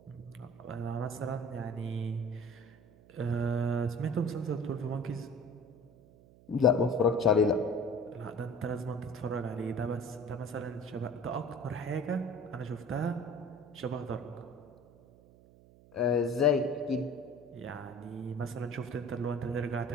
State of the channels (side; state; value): right; noise; hum, 24 dB below the sound